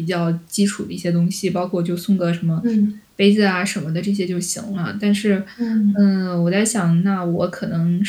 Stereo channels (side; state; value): both; identical; correlation 1.00